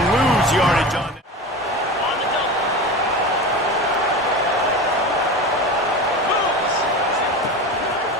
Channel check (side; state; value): both; normal; correlation 0.28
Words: lose yardage on it.